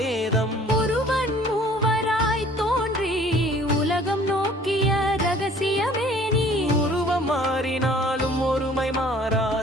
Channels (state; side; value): normal; both; correlation 0.53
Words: ஒருவன் மூவராய் தோன்றி உலகம் நோக்கிய ரகசியமே நீ. உருவம் மாறினாலும் ஒருமை